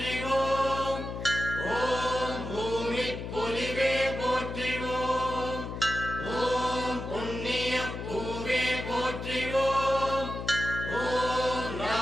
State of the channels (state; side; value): noise; left; hum, 7 dB below the sound